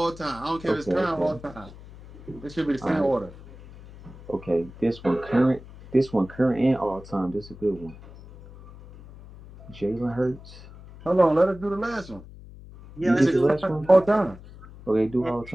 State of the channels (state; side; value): noise; left; hum, 18 dB below the sound